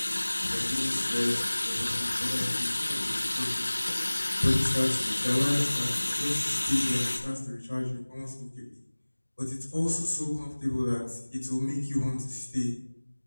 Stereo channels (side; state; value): both; inverted; correlation -1.00